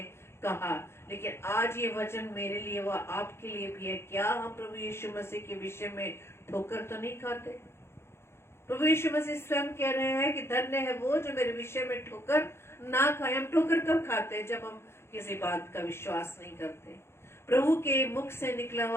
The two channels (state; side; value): late; right; 0.12 ms